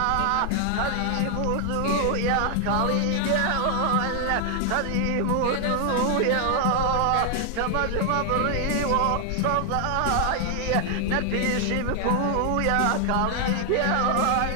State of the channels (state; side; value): different; both; correlation 0.00